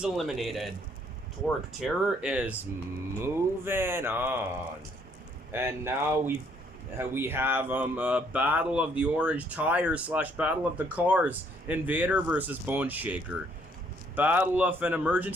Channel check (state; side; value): normal; both; correlation 0.66